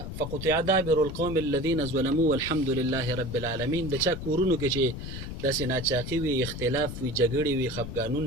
فقطع دابر القوم الذين ظلموا والحمد لله رب العالمین. د چا کورونو کې چې داسې ناچاقي وي، اختلاف وي، جګړې وي،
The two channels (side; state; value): left; noise; rumble, 8 dB below the sound